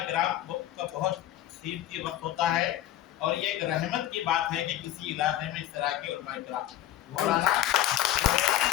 किराम का बहुत कीमती वक्त होता है और ये एक रहमत की बात है कि किसी इलाके में इस तरह के उलमाए किराम मौलाना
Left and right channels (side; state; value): right; quieter; 12.7 dB